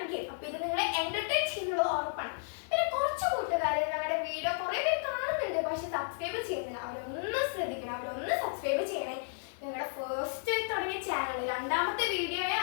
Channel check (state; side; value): silent; right; digital silence